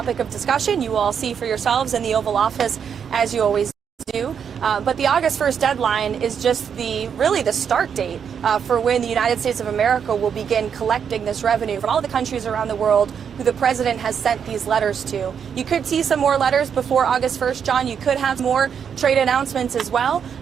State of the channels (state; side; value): quieter; left; 7.4 dB